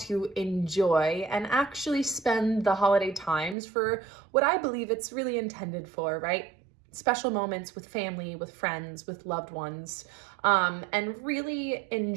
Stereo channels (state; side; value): drops out; left; at 3.6 s